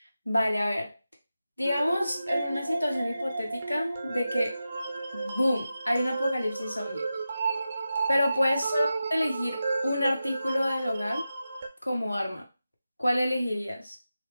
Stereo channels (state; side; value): inverted; both; correlation -0.92